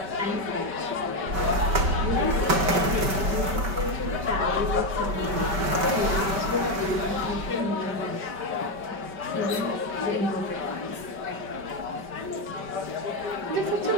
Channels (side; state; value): left; late; 5.2 ms